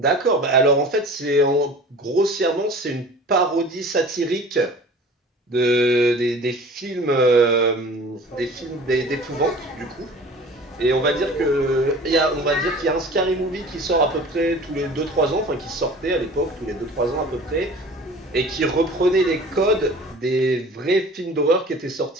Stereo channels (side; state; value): both; normal; correlation 0.43